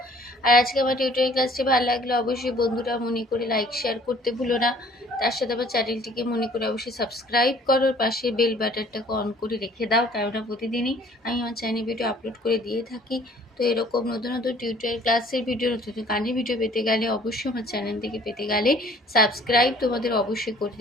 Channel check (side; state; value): both; normal; correlation 0.55